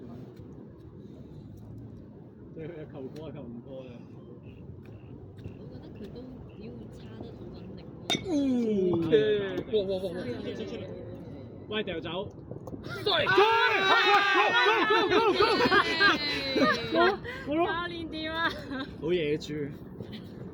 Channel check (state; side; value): identical; both; correlation 1.00